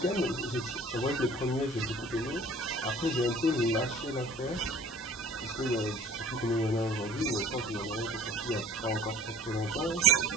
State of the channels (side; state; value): both; normal; correlation 0.47